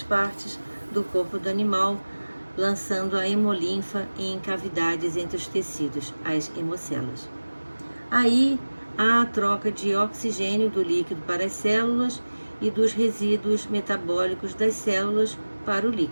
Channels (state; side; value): inverted; both; correlation -1.00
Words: partes do corpo do animal, lançando a hemolinfa em cavidades entre os tecidos, as hemocelas. Aí há a troca de oxigênio do líquido para as células e dos resíduos metabólicos das células para o